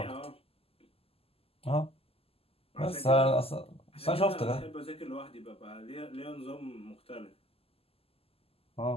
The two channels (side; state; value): right; late; 0.28 ms